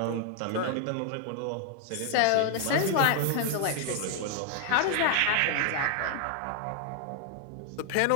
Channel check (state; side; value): different; both; correlation 0.00